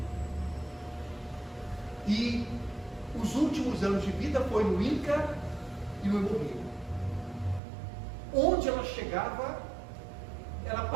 E os últimos anos de vida foi no INCA e no Hemorrio. Onde ela chegava, ela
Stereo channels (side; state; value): left; drops out; at 7.6 s